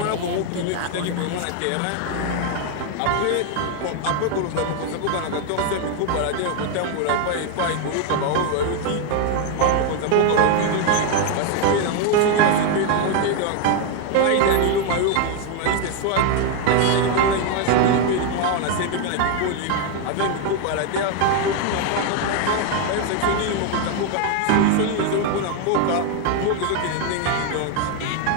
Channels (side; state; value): both; different; correlation 0.01